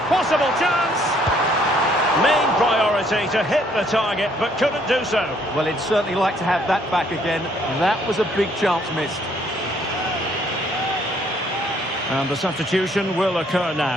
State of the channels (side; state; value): both; normal; correlation 0.65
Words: Possible chance. Main priority to hit the target, but couldn't do so. Well, he'd certainly like to have that back again. That was a big chance missed. And the substitution will occur